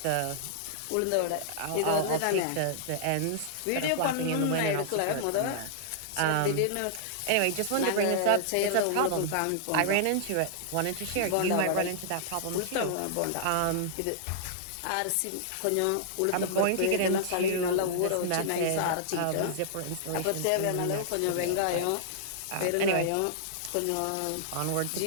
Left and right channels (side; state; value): both; different; correlation -0.01